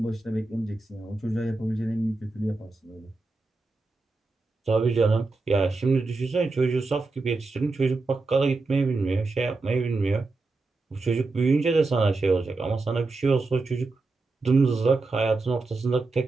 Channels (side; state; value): left; quieter; 3.5 dB